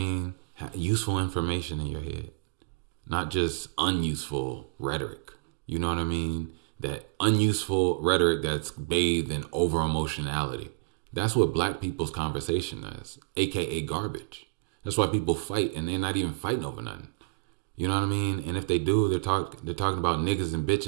Useful information in your head, not just unuseful rhetoric. You know what I mean? That unuseful rhetoric that's bathed in over emotionality. That's what black people's conversation is, aka garbage. That's why people fight and they're not even fighting over nothing. You know what I mean? And if they do, they're talking about niggas and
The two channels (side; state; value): left; quieter; 26.3 dB